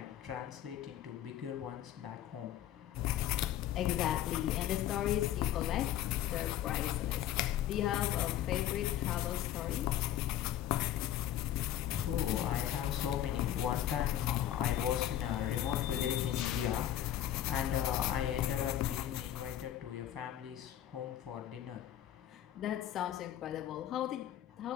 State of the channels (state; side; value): quieter; right; 11.9 dB